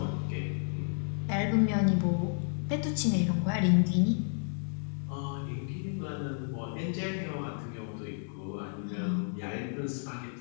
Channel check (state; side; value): silent; right; 57 dB below the other